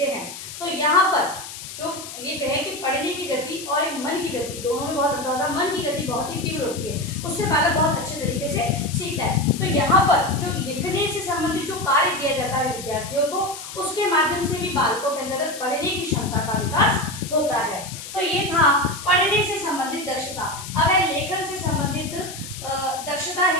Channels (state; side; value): noise; left; hiss, 11 dB below the sound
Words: हैं। तो यहाँ पर जो ये कहे कि पढ़ने की गति और एक मन मन की गति, दोनों में बहुत अंतर होता है। मन की गति बहुत ही तीव्र होती है, उससे बालक बहुत अच्छे तरीके से सीखता है। तो यहाँ पर जो लिखने से संबंधित जो कार्य किया जाता है विद्यार्थियों को, उसके माध्यम से भी बालकों के अंतर्गत पढ़ने की क्षमता का विकास होता है। तो ये था पढ़ने से संबंधित दक्षता। अब है लेखन से संबंधित दक्षता